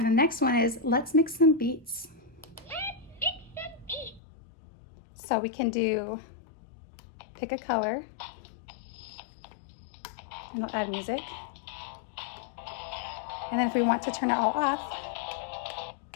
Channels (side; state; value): right; drops out; at 4.2 s